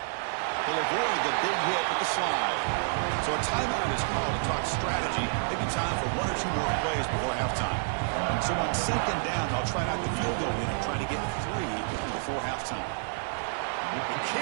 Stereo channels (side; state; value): left; silent; 59 dB below the other